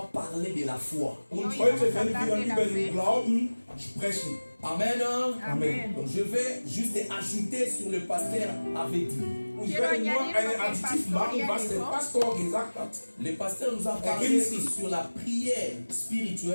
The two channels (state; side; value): inverted; both; correlation -1.00